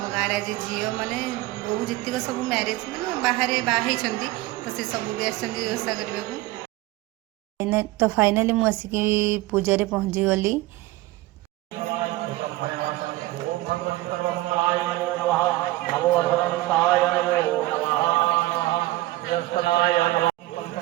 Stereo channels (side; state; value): left; quieter; 18.0 dB